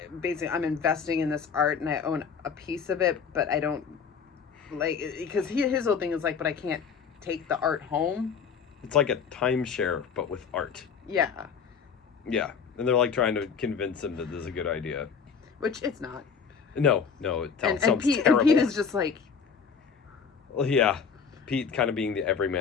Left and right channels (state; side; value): quieter; right; 6.3 dB